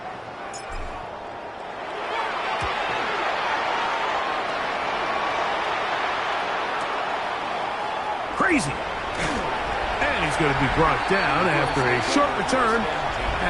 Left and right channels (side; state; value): both; identical; correlation 1.00